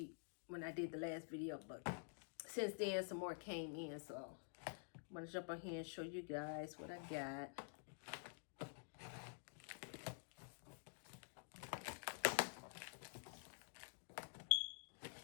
when I did the last video, but since then some more came in, so I'm going to jump on here and show you guys what I got.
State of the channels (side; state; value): right; silent; digital silence